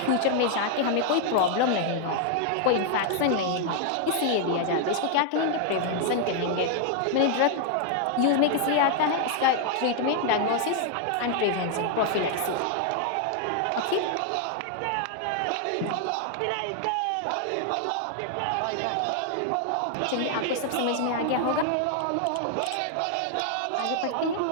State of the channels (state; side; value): different; both; correlation 0.00